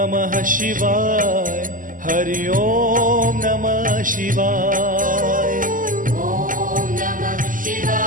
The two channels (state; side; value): late; left; 0.39 ms